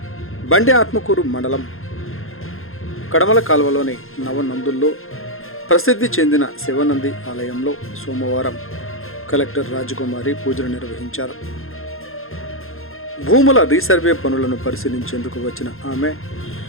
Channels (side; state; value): right; late; 0.61 ms